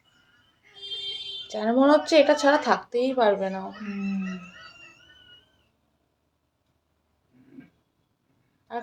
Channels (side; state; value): both; identical; correlation 1.00